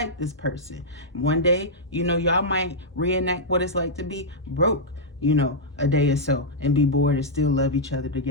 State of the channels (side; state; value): both; normal; correlation -0.08